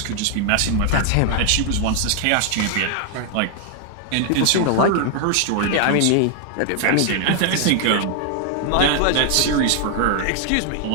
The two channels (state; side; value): different; both; correlation 0.00